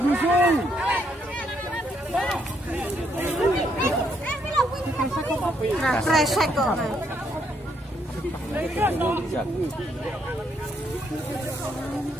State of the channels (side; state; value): both; normal; correlation 0.73